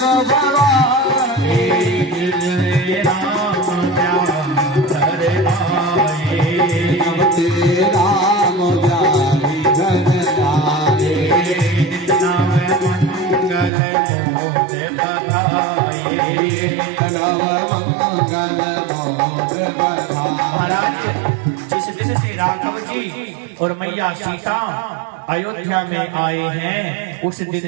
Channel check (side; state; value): left; drops out; at 13.7 s